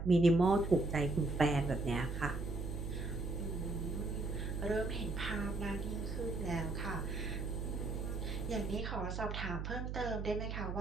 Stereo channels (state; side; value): noise; right; hum, 3 dB below the sound